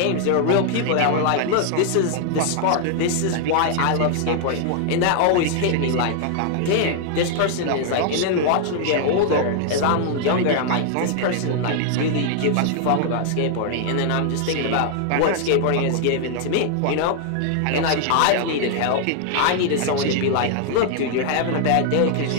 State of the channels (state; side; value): different; both; correlation 0.00